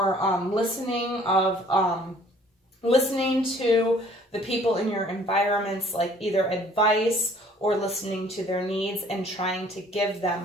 listening to the people in your environments, like either advice or listening to their needs and trying to give them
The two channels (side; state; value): both; normal; correlation 0.56